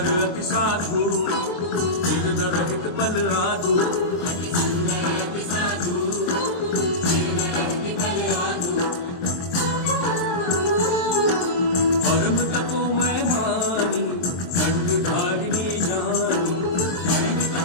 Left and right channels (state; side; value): late; right; 23 ms